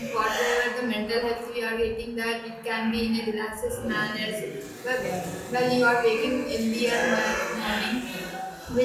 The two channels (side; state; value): both; identical; correlation 1.00